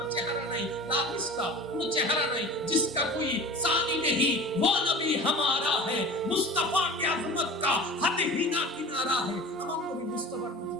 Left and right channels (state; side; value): normal; both; correlation 0.38